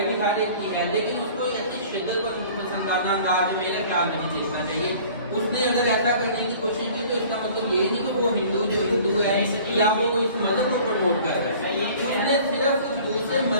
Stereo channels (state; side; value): inverted; both; correlation -0.48